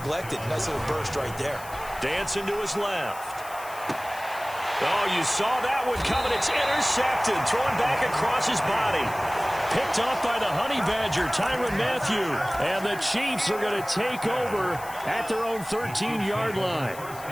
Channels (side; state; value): left; noise; hiss, 17 dB below the sound